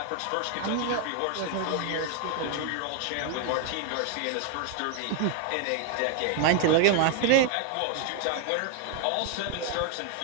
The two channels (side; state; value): both; different; correlation 0.00